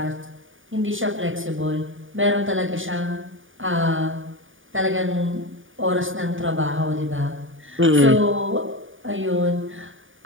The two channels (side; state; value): left; late; 0.57 ms